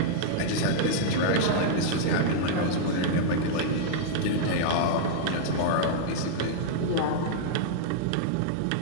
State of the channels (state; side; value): different; both; correlation -0.02